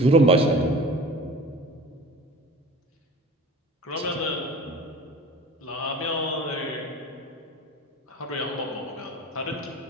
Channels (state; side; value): normal; both; correlation 0.40